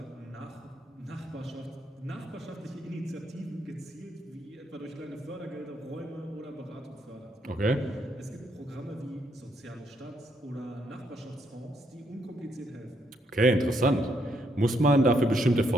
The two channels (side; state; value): both; normal; correlation 0.75